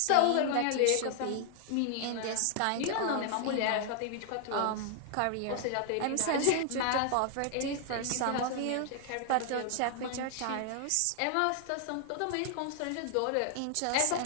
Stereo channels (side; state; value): both; different; correlation 0.00